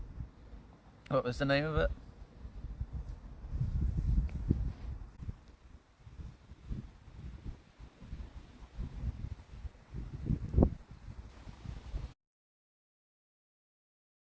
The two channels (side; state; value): both; identical; correlation 1.00